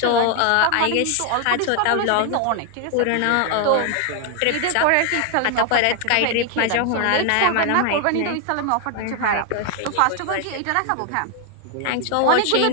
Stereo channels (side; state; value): both; different; correlation 0.00